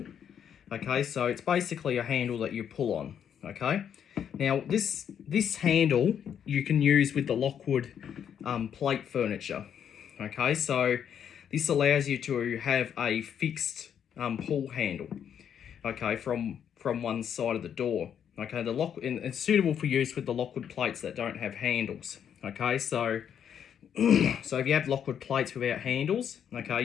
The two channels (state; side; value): quieter; right; 8.6 dB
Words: Okay, so it's basically a handle that you pull on. Okay, now this handle you can use with the Lockwood plate furniture. Okay, so this allows you to have a fixed pull handle. Okay, from one side of the door. Okay, and it's suitable for use with the Lockwood plates that don't have handles. Okay, so so if you have Lockwood plates without handles, okay,